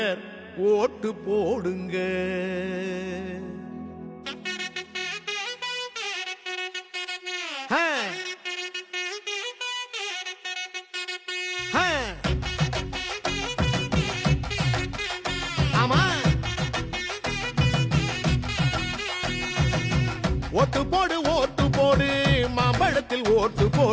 ஓட்டு போடுங்க. ஓட்டு போடு ஓட்டு போடு மாம்பழத்தில் ஓட்டு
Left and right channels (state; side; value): identical; both; correlation 1.00